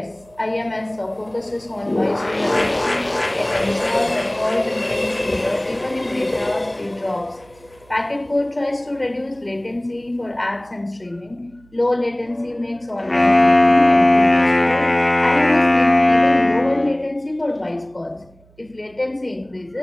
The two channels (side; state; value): right; noise; hum, 30 dB below the sound